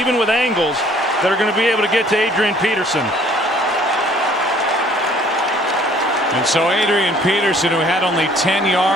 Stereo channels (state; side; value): normal; both; correlation 0.57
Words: with angles, that are going to be able to get to Adrian Peterson. And so Adrian Peterson, who had only 10